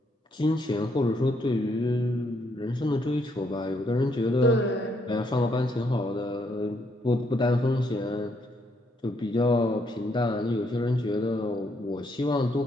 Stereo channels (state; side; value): normal; both; correlation 0.73